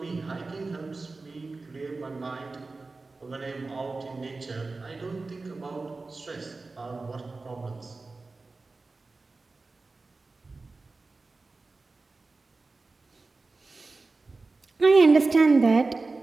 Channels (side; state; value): left; quieter; 3.7 dB